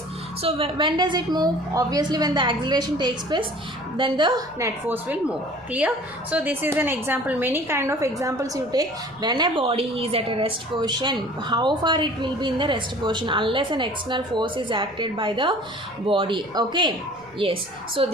So when does it move? Obviously when the acceleration takes place, then the net force will move. Clear? So this is an example. Many kind of examples you take. When a body is at a rest position, how far it will be in the rest position unless an external force is acted by the body. Okay. Yes. So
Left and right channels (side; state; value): right; noise; rumble, 28 dB below the sound